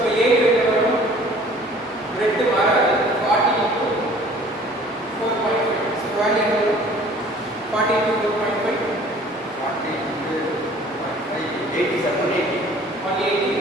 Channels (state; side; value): normal; both; correlation 0.51